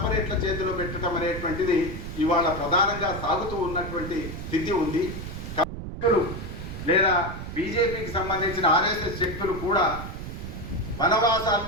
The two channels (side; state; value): right; noise; rumble, 8 dB below the sound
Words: చేతిలో పెట్టడం అనేటువంటిది ఇవాళ ప్రధానంగా సాగుతూ ఉన్నటువంటి స్థితి ఉంది. లేదా బీజేపీకి సంబంధించిన ఆర్ఎస్ఎస్ శక్తులు కూడా